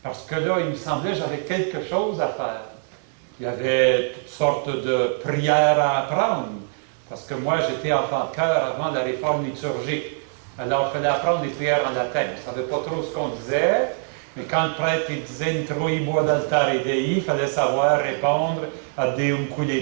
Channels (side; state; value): left; silent; digital silence